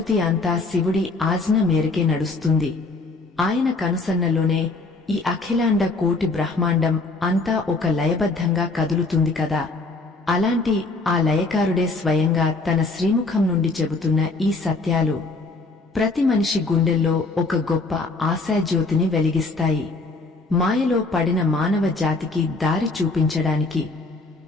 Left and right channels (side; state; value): right; quieter; 3.5 dB